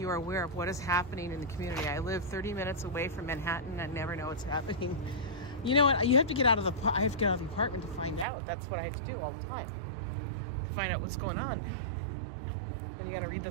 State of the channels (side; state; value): left; drops out; at 8.2 s